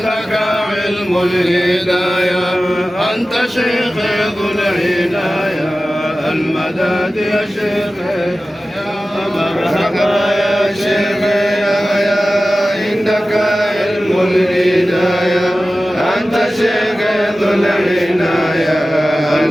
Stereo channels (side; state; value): both; normal; correlation 0.95